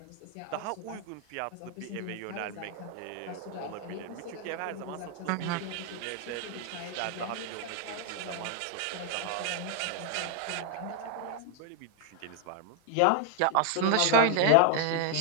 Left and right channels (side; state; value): both; different; correlation 0.00